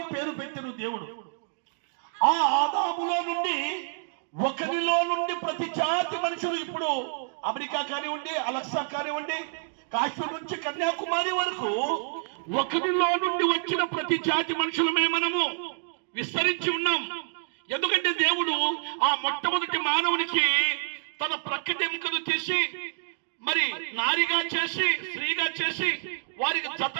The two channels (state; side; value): silent; left; digital silence